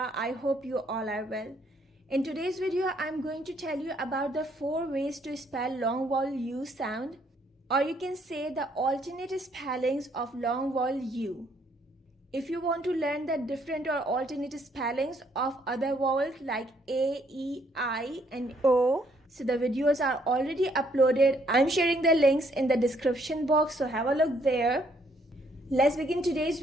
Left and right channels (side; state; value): both; normal; correlation 0.68